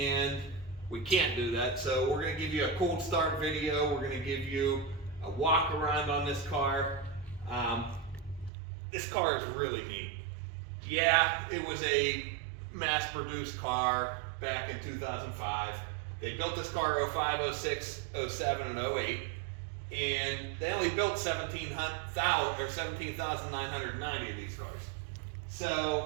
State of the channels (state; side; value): drops out; left; at 8.5 s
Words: we can't do that. So we're going to give you a cold start video. We're going to give you a walk around on this car. This car is really neat. Yeah, it was a mass-produced car back in 2005. They built this car 05, 06, 07, and 08, and they only built 17,990 of these cars.